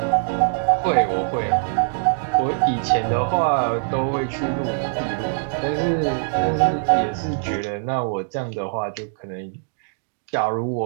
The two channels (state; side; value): silent; left; digital silence